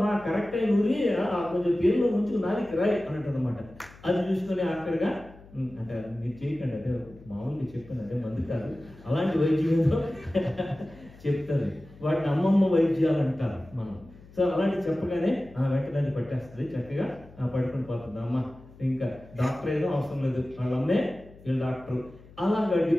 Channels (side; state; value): left; noise; hum, 22 dB below the sound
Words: కరెక్ట్ అయిన ఊరి కొంచెం పేరులో ముంచుకు నాలికి రాయి అని అంటుంది అనమాట. అది చూసుకొని ఆఖరిగా అంటే మీరు చేయకండి, అదే మామూలుగా చెప్పాను, అదే మంది కాదు, అలాంటి వైద్యంలో చెప్తుంది. వాటిని అమ్మమ్మ వైద్యాలు అంటారు మనం. సో అలాంటి చెప్పగానే వెంటనే పట్టేస్తుంది, చక్కగా పడుకుని పోతుంది అమ్మ. ఇంకా డాక్టర్ ఏదో అవసరం లేదు, వాళ్ళమ్మే వీళ్ళు డాక్టర్. అలాగా